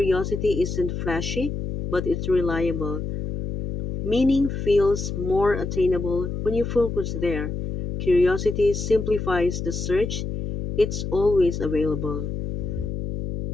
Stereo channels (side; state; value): left; noise; hum, 4 dB below the sound